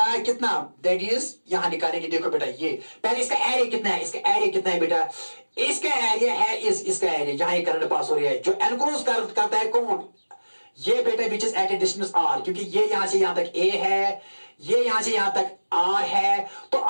कितना, दैट इज यहां निकालेंगे, देखो बेटा ये पहले इसका एरिया कितना है, इसका एरिया कितना है बेटा, इसका एरिया है इसका एरिया जहां ये करंट पास हो रही है, जो एनक्लोज करता है कौन, ये बेटा which is at a distance R, क्योंकि ये यहां से यहां तक ए है, ये यहां से यहां तक आर है, तो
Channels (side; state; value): both; inverted; correlation -1.00